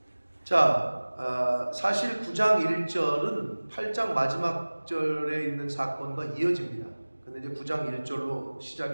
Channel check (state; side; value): inverted; both; correlation -1.00